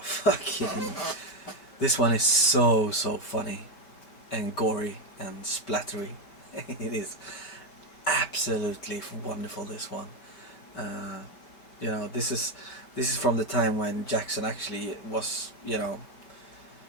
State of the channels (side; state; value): right; late; 5.2 ms